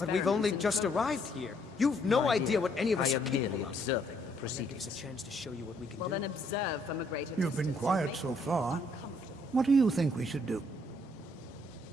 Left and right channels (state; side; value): normal; both; correlation 0.68